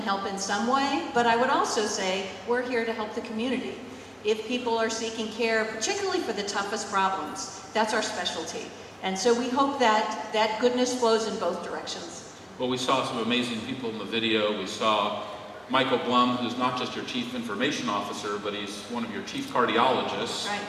in some way, but I would also say we're here to help the community. If people are seeking care, particularly for the toughest problems, that's our specialty. And so we hope that that goodness flows in both directions. Well, we saw some amazing people in the video. We saw Michael Blum, who's not just your chief information officer, but he's one of your chief cardiologists.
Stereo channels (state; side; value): identical; both; correlation 1.00